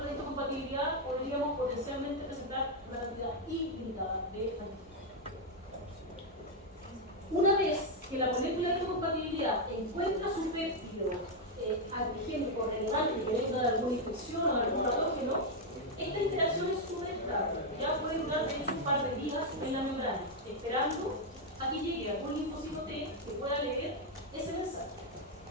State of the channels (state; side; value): normal; both; correlation 0.01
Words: de histocompatibilidad, podríamos potencialmente presentar una cantidad ilimitada de antígenos. Una vez que la molécula de histocompatibilidad encuentra su péptido antigénico relevante que venga de alguna infección o de algún patógeno, esta interacción es súper estable. Ya puede durar de hecho un par de días en la membrana, esperando a que llegue algún linfocito T que pueda leer ese mensaje.